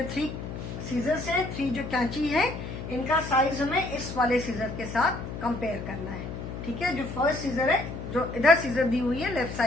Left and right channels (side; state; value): left; noise; hum, 8 dB below the sound